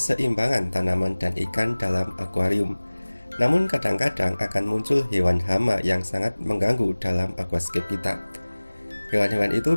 tanaman dan ikan dalam akuarium. Namun kadang-kadang akan muncul hewan hama yang sangat mengganggu dalam aquascape kita. Hewan-hewan itu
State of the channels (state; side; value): inverted; both; correlation -1.00